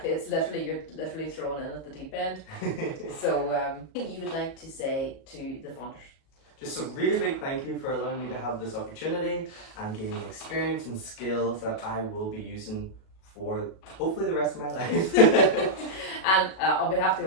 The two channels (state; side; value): late; right; 37 ms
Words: you're literally thrown in at the deep end. So, you would like to say to the funders? Just a really big thank you for allowing me to have this opportunity and gaining experience and skills that I will be using for hopefully the rest of my life. And on behalf of the